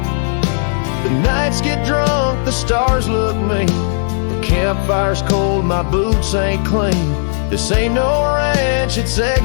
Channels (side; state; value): right; silent; digital silence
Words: The nights get drunk, the stars look mean. The campfire's cold, my boots ain't clean. This ain't no ranch, it's